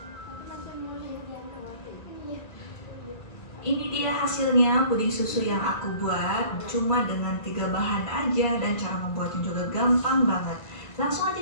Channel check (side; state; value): right; late; 1.8 ms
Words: Ini dia hasilnya puding susu yang aku buat cuma dengan 3 bahan aja dan cara membuatnya juga gampang banget. Langsung